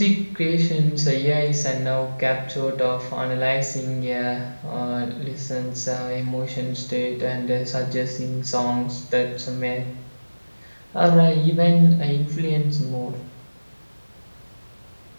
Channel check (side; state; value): both; inverted; correlation -1.00